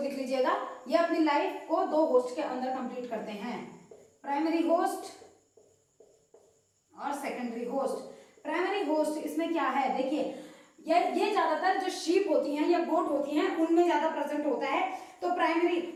लीजिएगा, ये अपनी लाइफ को दो होस्ट के अंदर कंप्लीट करते हैं, प्राइमरी होस्ट और सेकेंडरी होस्ट। प्राइमरी होस्ट इसमें क्या है, देखिए ये ज्यादातर जो शीप होती हैं या गोट होती हैं उनमें ज्यादा प्रेजेंट होता है। तो प्राइमरी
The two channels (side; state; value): both; identical; correlation 1.00